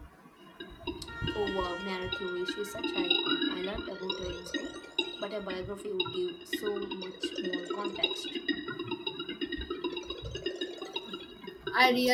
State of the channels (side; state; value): both; identical; correlation 1.00